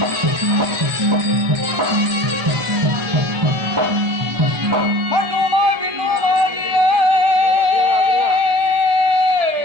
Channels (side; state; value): left; late; 1.2 ms